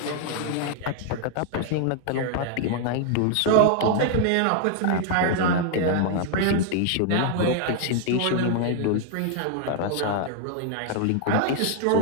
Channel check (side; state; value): both; different; correlation 0.00